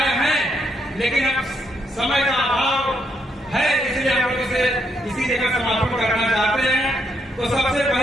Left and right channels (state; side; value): normal; both; correlation 0.76